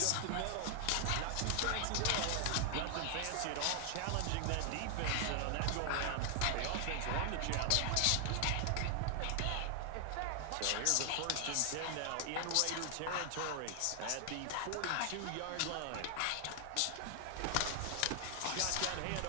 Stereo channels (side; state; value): both; different; correlation 0.00